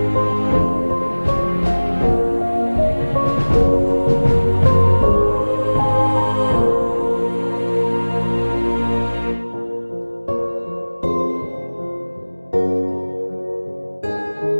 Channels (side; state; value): both; inverted; correlation -1.00